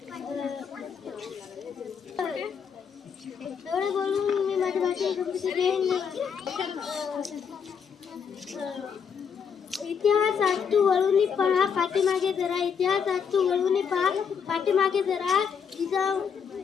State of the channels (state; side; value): quieter; right; 6.9 dB